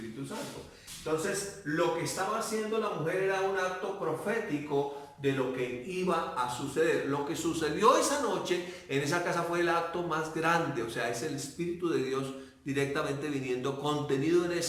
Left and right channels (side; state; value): both; identical; correlation 1.00